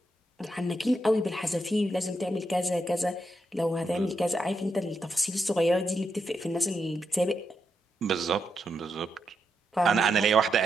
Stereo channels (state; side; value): normal; both; correlation 0.83